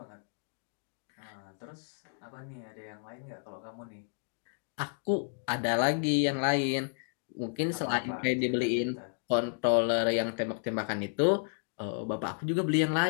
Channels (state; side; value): silent; right; 56 dB below the other